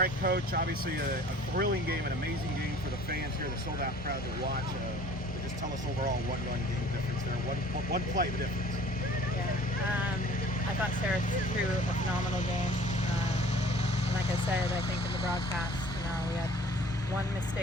right, Coach, obviously a thrilling game, an amazing game for the fans here, the sold-out crowd to watch. Just tell us overall one-run game difference there, one play the difference. Yeah, I thought Sarah threw a phenomenal game. And like I said, I think in the broadcast, we had one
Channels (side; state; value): both; normal; correlation 0.50